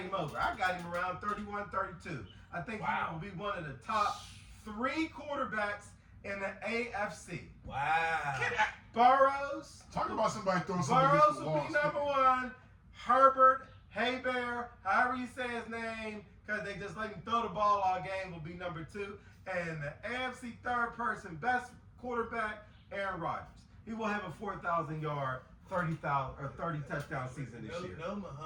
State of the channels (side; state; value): both; identical; correlation 1.00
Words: him over. I got him around 31, 32. I think Wow. he will be one of the top 3 quarterbacks in the AFC. Wow. Burrows. Talk about somebody throwing something Burrows against the will wall. be number 1. Herbert, Haybear, however you say his name, because they just let him throw the ball all game, will be number 2. And the AFC third person, best quarterback, Aaron Rodgers. He will have a 4,000-yard, 30 touchdown season this year. No